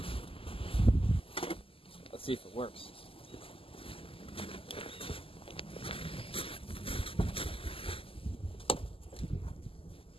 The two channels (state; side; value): late; right; 0.26 ms